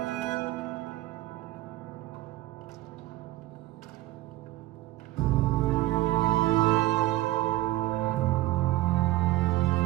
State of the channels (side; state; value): left; quieter; 17.1 dB